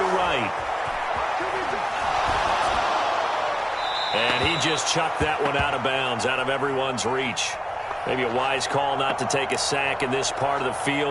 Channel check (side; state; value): both; identical; correlation 1.00